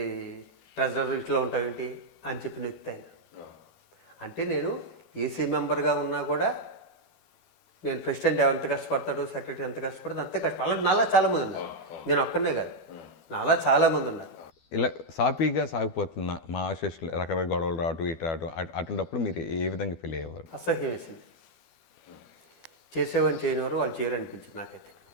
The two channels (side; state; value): right; late; 12 ms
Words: ట్రెజరర్ ఇట్లా ఉంటావు ఏంటి అని చెప్పి నెక్కుతాను. అంటే నేను ఈసీ మెంబర్గా ఉన్నా కూడా నేను ప్రెసిడెంట్ ఎంత కష్టపడతాడు, సెక్రటరీ ఎంత కష్టపడతాడు అంతే కష్టం. అలా నాలా చాలామంది ఉన్నారు, నేను ఒక్కనే కాదు, నాలా చాలామంది ఉన్నారు. ఇలా సాఫీగా సాగిపోతున్న మా అసోసియేషన్ రకరకాల గొడవలు రావటం ఇటు రావటం, అటువంటిప్పుడు మీరు ఏ విధంగా ఫీల్ అయ్యేవారు? అసహ్యం వేసింది. చేసేవాడిని చేయనివారు వాళ్ళు చేయాలనిపించింది.